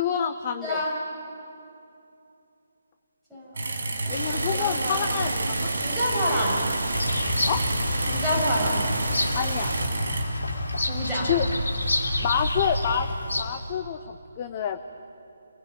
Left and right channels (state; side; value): inverted; both; correlation -0.74